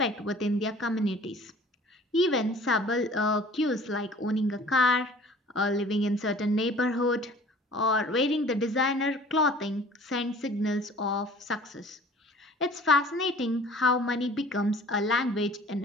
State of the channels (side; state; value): both; normal; correlation 0.48